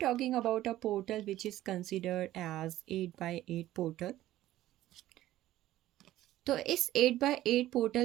talking about a portal which is considered as 8 by 8 portal. तो इस 8 by 8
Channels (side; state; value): left; quieter; 14.6 dB